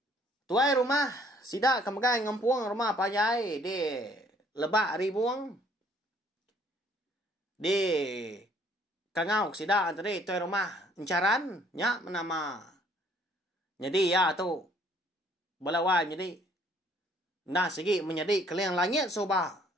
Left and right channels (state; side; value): normal; both; correlation 0.61